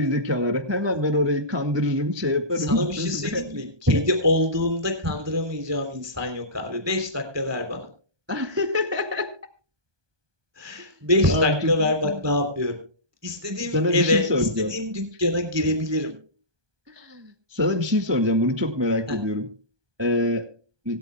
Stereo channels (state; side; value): late; left; 1.2 ms